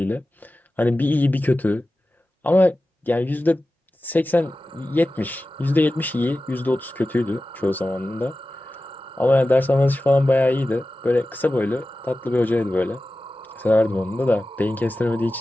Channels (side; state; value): both; normal; correlation 0.95